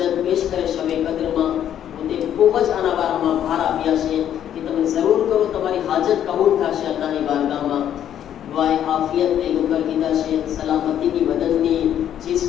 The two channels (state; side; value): quieter; right; 10.3 dB